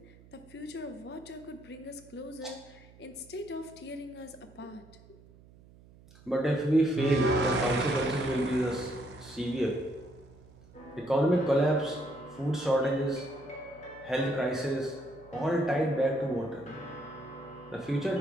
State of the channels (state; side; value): noise; right; hum, 24 dB below the sound